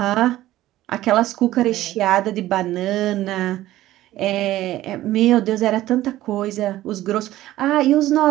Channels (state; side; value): quieter; left; 14.9 dB